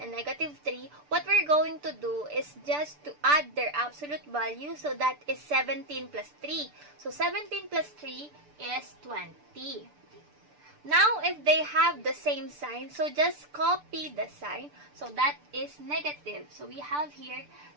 negative 3, what we're going to do is just to add their absolute value. So that is 17 plus 3. So 17 plus 3 is 20. Now, if they have the same sign, so just copy the sign. So that is negative. So we have here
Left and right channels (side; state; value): left; late; 6.8 ms